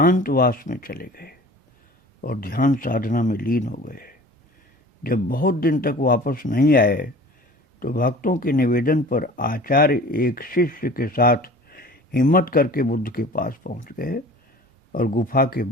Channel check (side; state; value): both; normal; correlation 0.43